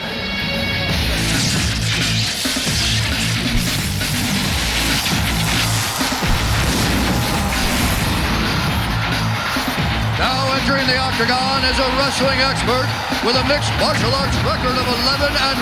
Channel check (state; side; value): identical; both; correlation 1.00